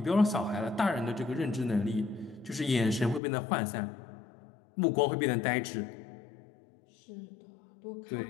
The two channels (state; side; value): drops out; right; at 3.2 s